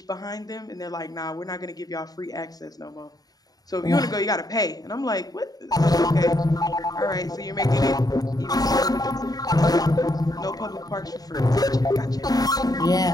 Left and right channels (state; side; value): late; right; 0.18 ms